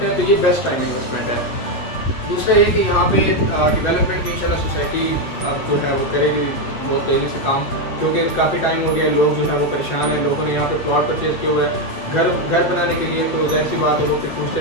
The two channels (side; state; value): right; late; 8.1 ms